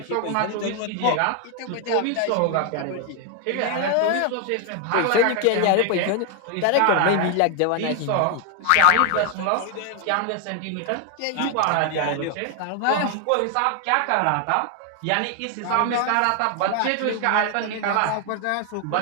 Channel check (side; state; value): both; different; correlation 0.01